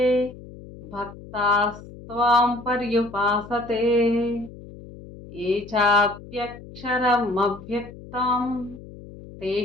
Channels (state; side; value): noise; left; hum, 16 dB below the sound